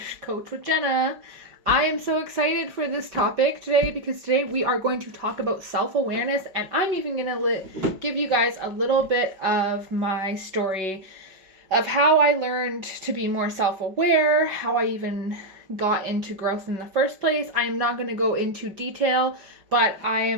Coach with Jenna. I am so excited for this topic today because today we are going to talk about self-awareness, and I'm even going to give you guys a little bit of my story of how I learned to be more self-aware, how I even got into growth in the first place. I am not going to go into detail, but I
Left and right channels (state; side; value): late; left; 5.2 ms